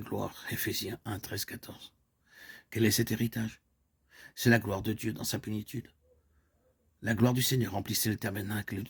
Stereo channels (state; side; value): identical; both; correlation 1.00